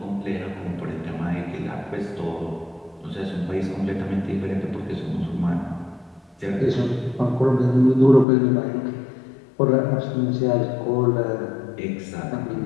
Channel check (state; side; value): drops out; right; at 8.2 s